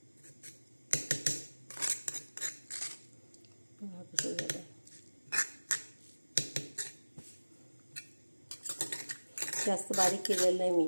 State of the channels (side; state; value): both; inverted; correlation -1.00